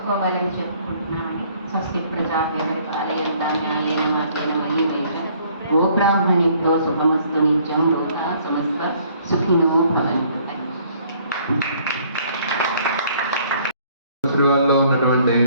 చెప్పుకుంటున్నామని. స్వస్తి ప్రజాభ్యవరిపాలయంతా న్యాయేన మార్గేణ మయీ వేద. ఓ బ్రాహ్మణేభ్యో శుభమస్తు నిత్యం. లోకా సమస్త సుఖినో భవంతు. శ్రీవారిలో ఉన్నటువంటి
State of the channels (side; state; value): both; inverted; correlation -0.61